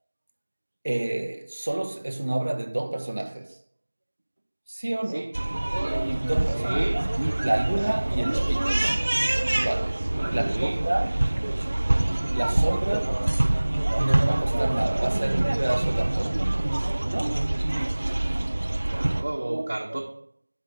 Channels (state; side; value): inverted; both; correlation -1.00